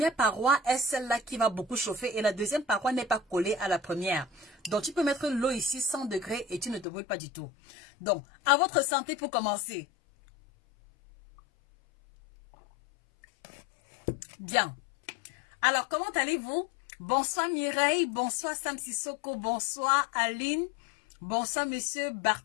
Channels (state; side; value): drops out; right; at 6.9 s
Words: paroi est celle-là qui va beaucoup chauffer et la deuxième paroi n'est pas collée à la première. Donc tu peux mettre l'eau ici 100 degrés et tu ne te brûles pas du tout. Donc, à votre santé pour commencer. Bien. Alors, comment allez-vous? Bonsoir Mireille, bonsoir Sam Sissoko, bonsoir Aline, bonsoir Monsieur